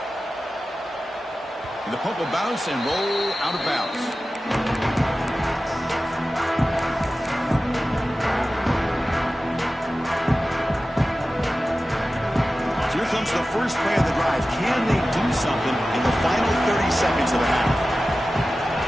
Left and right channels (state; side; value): normal; both; correlation 0.95